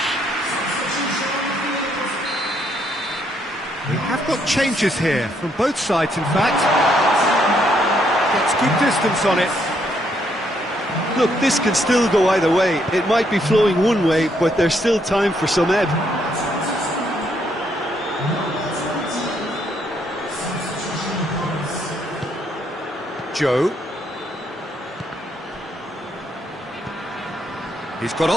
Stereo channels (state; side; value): normal; both; correlation 0.73